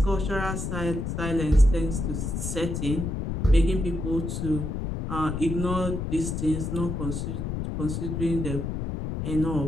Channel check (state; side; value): noise; left; rumble, 3 dB below the sound